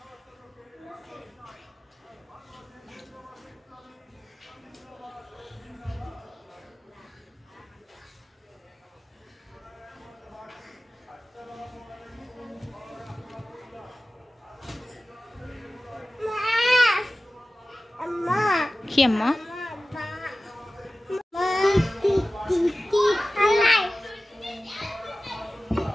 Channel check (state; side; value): normal; both; correlation 0.96